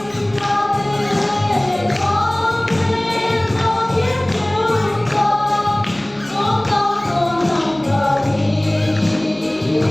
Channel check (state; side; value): noise; left; hum, 28 dB below the sound